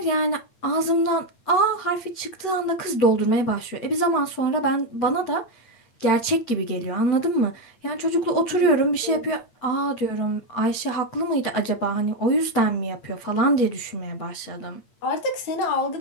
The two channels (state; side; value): late; right; 8.6 ms